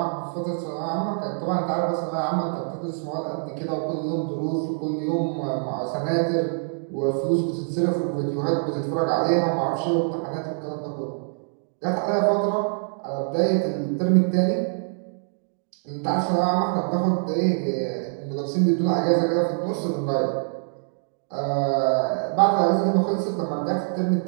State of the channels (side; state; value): left; silent; digital silence